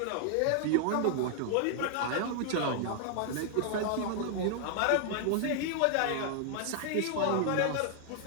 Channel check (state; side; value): different; both; correlation 0.00